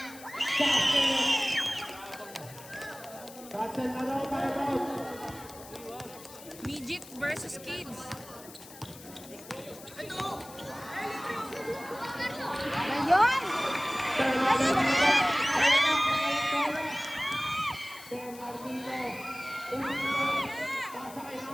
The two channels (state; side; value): noise; left; hiss, 18 dB below the sound